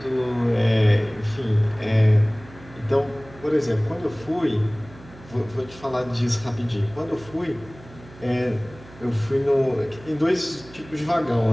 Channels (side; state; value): right; noise; hum, 20 dB below the sound